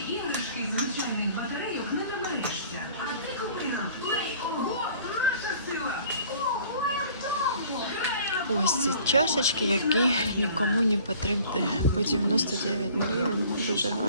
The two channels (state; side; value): inverted; both; correlation -0.51